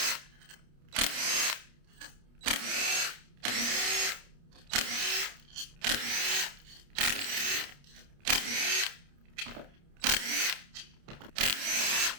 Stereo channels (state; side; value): late; left; 29 ms